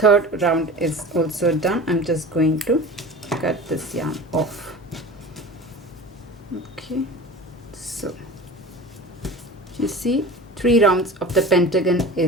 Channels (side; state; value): both; normal; correlation 0.36